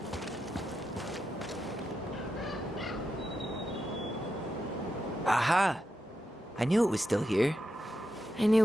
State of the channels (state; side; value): normal; both; correlation 0.87